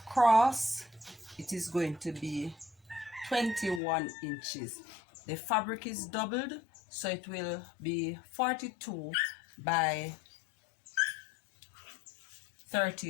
it is going to be 21 inches. The fabric is doubled, so it will be 42 by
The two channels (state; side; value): drops out; right; at 3.8 s